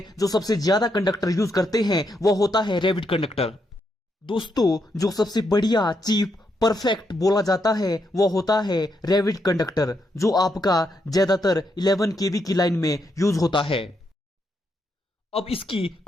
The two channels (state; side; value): normal; both; correlation 0.79